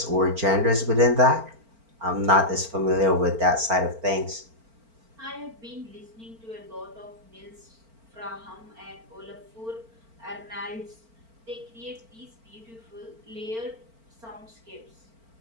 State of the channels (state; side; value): late; left; 4.4 ms